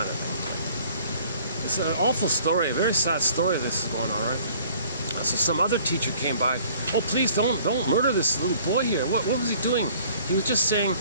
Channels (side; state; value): both; inverted; correlation -0.54